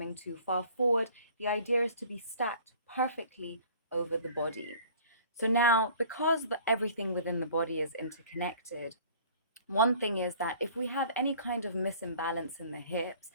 too far forward. The idea is to be stacked perfectly over the body. So now, because everything within the body is interconnected, one thing is that if we have any kind of misimbalance in the hips,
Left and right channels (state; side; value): inverted; both; correlation -0.50